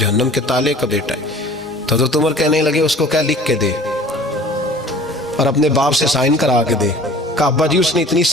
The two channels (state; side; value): normal; both; correlation 0.47